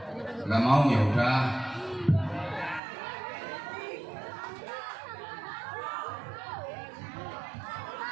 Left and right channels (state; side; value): drops out; left; at 2.8 s